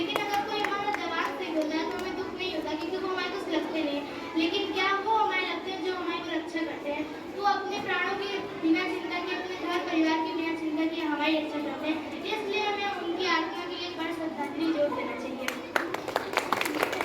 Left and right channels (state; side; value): identical; both; correlation 1.00